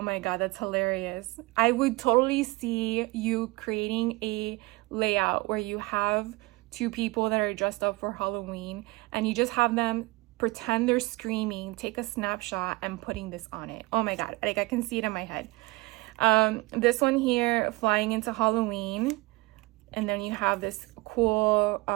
god, that's hilarious. I would totally see you creating a layout where you have 2 people that are dressed up for Halloween and you just have them pretend they're screaming, take a snapshot, and putting this on it. Oh my god, like I can see it in my head. This one here, Flying into Halloween. And then you have this cool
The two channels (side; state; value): left; quieter; 22.9 dB